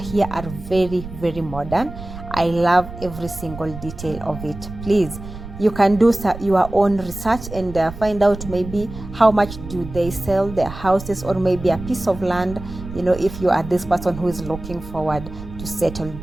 are very modern. I love every single detail of it. Please, you can do your own research and find out maybe how much do they sell their houses, or maybe a piece of land, if you are this person who is looking forward to settle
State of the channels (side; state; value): right; noise; rumble, 12 dB below the sound